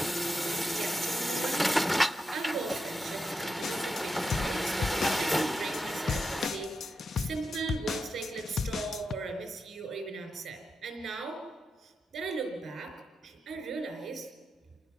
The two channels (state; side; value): normal; both; correlation 0.87